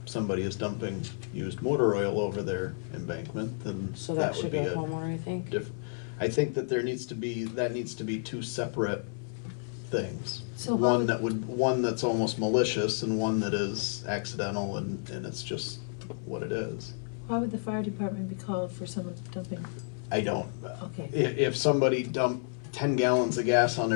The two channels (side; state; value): right; silent; 57 dB below the other